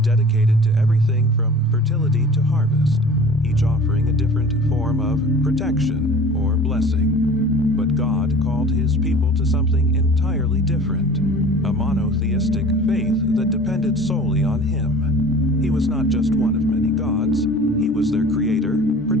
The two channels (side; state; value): both; normal; correlation 0.43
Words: dedicated to everything from fertility to harvest, each offering a different form of protection or blessing. But God called His people to something entirely different, a monotheistic faith that depended solely on Him. He was not just one of many gods, He was their creator,